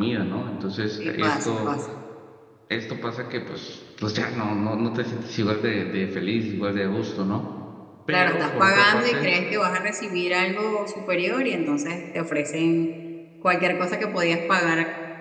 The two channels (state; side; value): identical; both; correlation 1.00